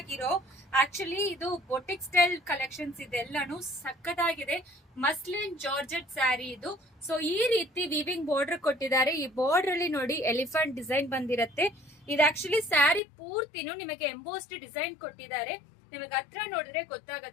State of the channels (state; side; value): drops out; right; at 13.0 s